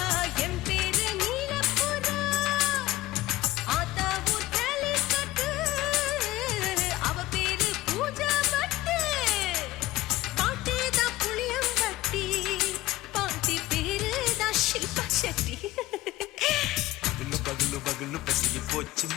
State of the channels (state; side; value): quieter; right; 17.4 dB